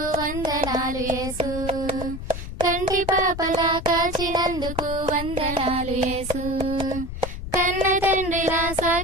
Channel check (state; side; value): noise; left; rumble, 8 dB below the sound